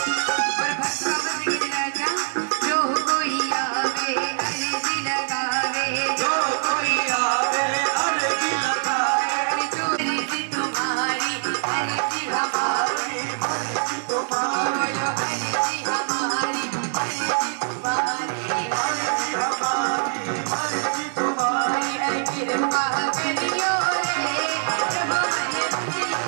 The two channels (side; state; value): left; silent; digital silence